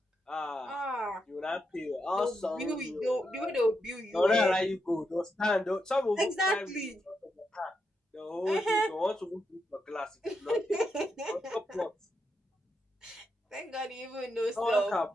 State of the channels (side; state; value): both; normal; correlation 0.84